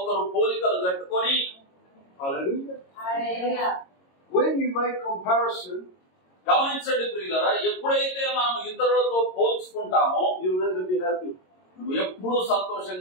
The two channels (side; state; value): right; late; 22 ms